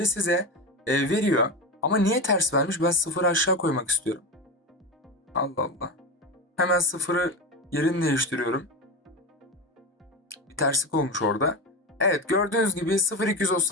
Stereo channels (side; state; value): both; normal; correlation 0.21